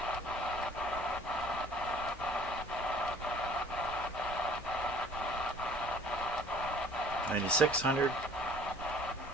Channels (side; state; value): both; normal; correlation 0.52